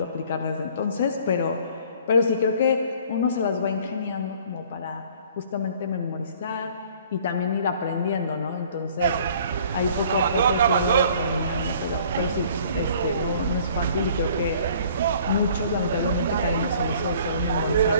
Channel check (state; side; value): inverted; both; correlation -0.54